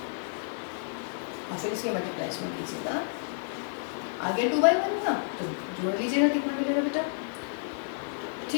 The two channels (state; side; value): silent; right; 57 dB below the other